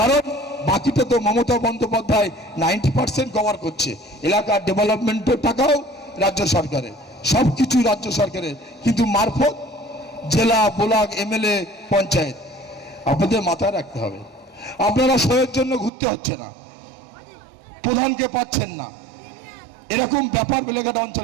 বাকিটা তো মমতা বন্দ্যোপাধ্যায় 90% কভার করছে। এলাকার ডেভেলপমেন্টের টাকাও রাজ্য সরকারের, সব কিছু রাজ্য সরকারের, কিন্তু মারফত জেলা ব্লক এমএলএ পঞ্চায়েত। আপনাদের মাথায় রাখতে হবে, আপনারা সয়ের জন্য ঘুরতে হচ্ছে না, প্রধানকে পাচ্ছেন না, এরকম ব্যাপার বেলেঘাটা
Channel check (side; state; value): left; drops out; at 15.9 s